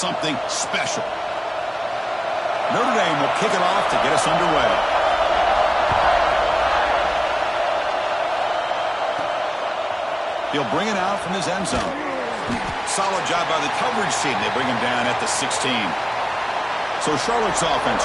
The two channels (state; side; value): identical; both; correlation 1.00